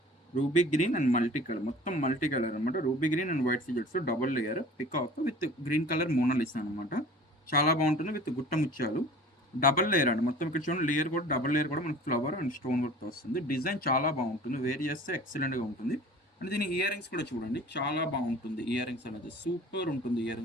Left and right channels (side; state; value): both; normal; correlation 0.44